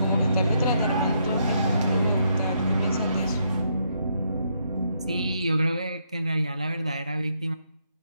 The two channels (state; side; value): inverted; both; correlation -0.76